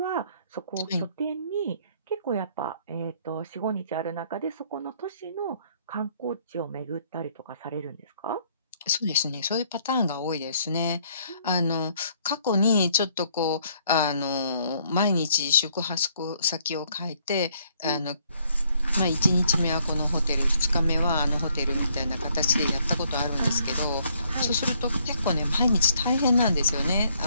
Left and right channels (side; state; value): both; inverted; correlation -0.66